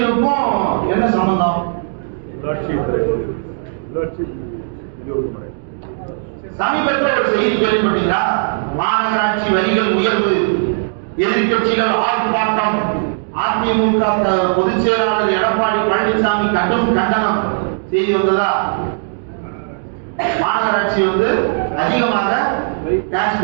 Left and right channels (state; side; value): silent; left; digital silence